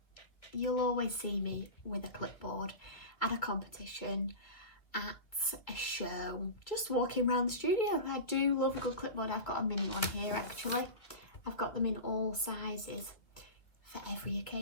You'll always see me with a clipboard at a competition, at a show, just walking around the studio. I do love a good clipboard. I've got a mini one here actually. I've got them in all sizes for every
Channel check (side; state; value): right; late; 2.1 ms